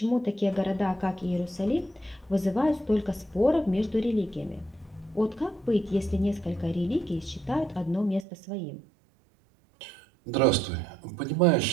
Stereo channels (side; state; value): left; drops out; at 8.2 s